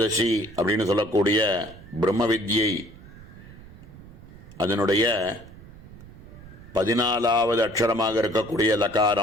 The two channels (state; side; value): noise; right; rumble, 18 dB below the sound